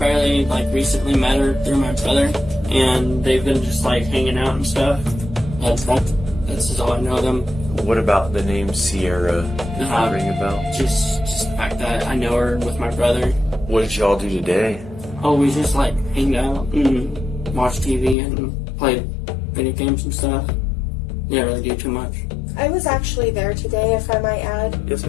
recently met her through my brother, and they've been just, hanging out and stuff. That's just all I know them. What about the name Sierra? Does that ring a bell? Just the fact that I know her with my brother. What did y'all do today? Oh, we just, hang out and watch TV and play video games and stuff. Didn't really do too much. I was actually there today, if I might add. Yes,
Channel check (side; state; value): right; drops out; at 18.2 s